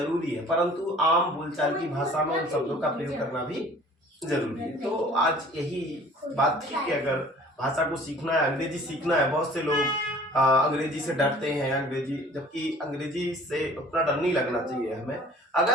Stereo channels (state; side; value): normal; both; correlation 0.50